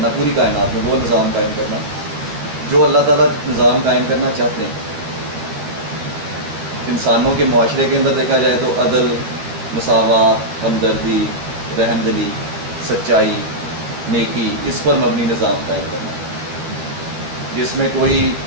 پوری کائنات میں وہ نظام قائم کرنا جو اللہ تعالیٰ نظام قائم کرنا چاہتے ہیں. انسانوں کے معاشرے کے اندر دیکھا جائے تو عدل، مساوات، ہمدردی، رحم دلی، سچائی، نیکی، اس پر مبنی نظام قائم کرنا جس میں کوئی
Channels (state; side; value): late; left; 12 ms